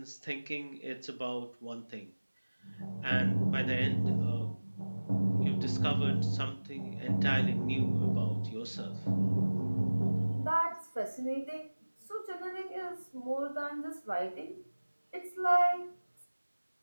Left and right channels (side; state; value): both; inverted; correlation -1.00